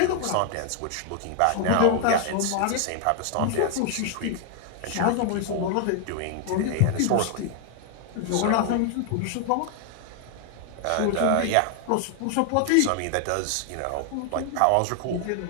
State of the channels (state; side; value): different; both; correlation 0.00